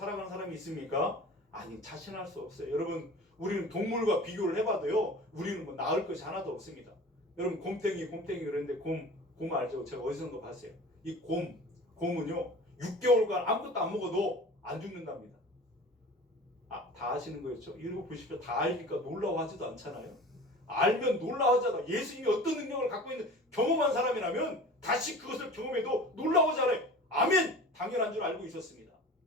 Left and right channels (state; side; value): normal; both; correlation 0.39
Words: 사람이 있습니까? 아니, 자신할 수 없어요. 여러분, 우리는 동물과 비교를 해봐도요, 우리는 뭐 나을 것이 하나도 없습니다. 여러분, 곰탱이 그랬는데 곰 알죠? 제가 어디선가 봤어요. 이 곰은요 6개월간 아무것도 안 먹어도 안 죽는답니다. 아, 다 아시는 거였죠? 이러고 보십시오. 다 알니까 놀라워하지도 않잖아요. 알면 놀라워하잖아. 예수님이 어떤 능력을 갖고 있는 경험한 사람이라면 다시 그것을 경험해도 놀라워하잖아요. 아멘! 당연한 줄 알고 있었습니다.